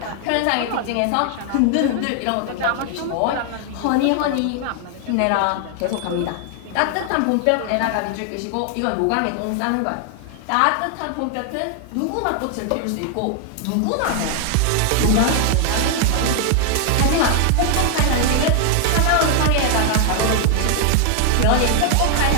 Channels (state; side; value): different; both; correlation 0.00